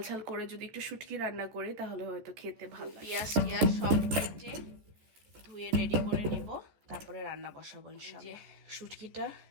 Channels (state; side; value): late; left; 14 ms